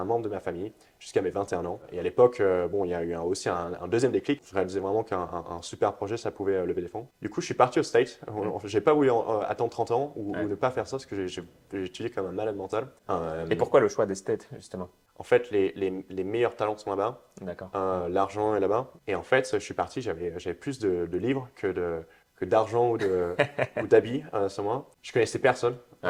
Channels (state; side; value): identical; both; correlation 1.00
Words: membre de ma famille jusqu'à mes 21 ans. Et à l'époque, bon, il y a eu aussi un deuxième déclic. Je réalisais vraiment qu'un super projet, ça pouvait lever des fonds. Du coup, je suis parti au States. J'ai pas voulu attendre 30 ans ou Ouais. ne pas faire ça parce que j'ai étudié comme un malade mental. Et pourquoi le choix des States, justement? En fait, les meilleurs talents sont là-bas. D'accord. L'argent est là-bas. Et en fait, je suis parti, j'avais plus de livres que que d'argent ou d'habits sur moi. Je connaissais personne